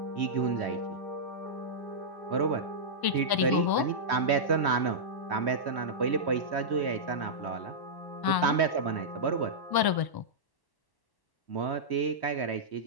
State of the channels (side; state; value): right; late; 1.0 ms